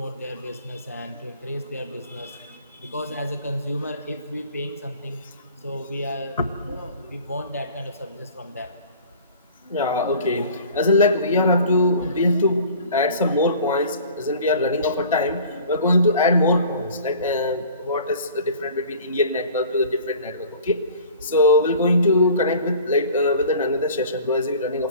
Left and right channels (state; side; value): inverted; both; correlation -0.46